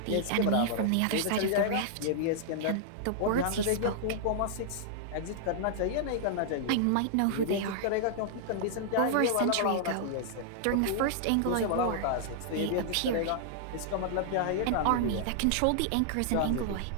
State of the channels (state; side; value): different; both; correlation -0.01